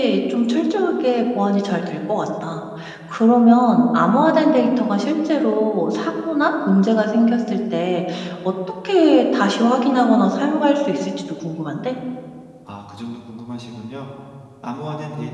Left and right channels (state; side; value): identical; both; correlation 1.00